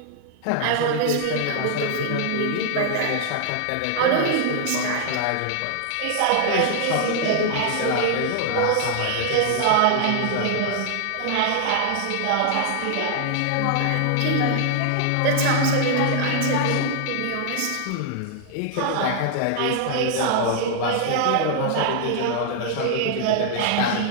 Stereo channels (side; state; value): both; different; correlation 0.00